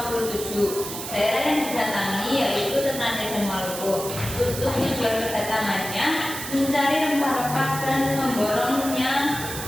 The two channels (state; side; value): noise; right; hiss, 8 dB below the sound